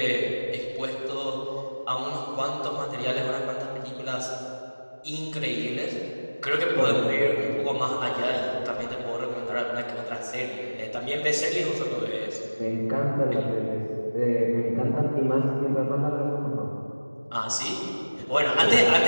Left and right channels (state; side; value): inverted; both; correlation -1.00